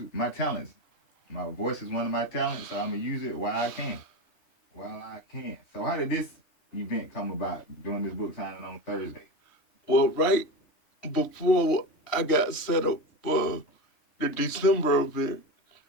my talents. My voice is one of my talents, so I'm going to use it while I can. So how did this event come about, doing this book signing on Thursday? Well, right before I got set up for the December event,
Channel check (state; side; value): late; right; 3.1 ms